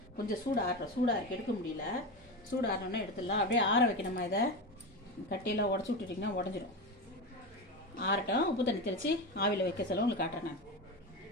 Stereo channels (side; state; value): both; normal; correlation 0.20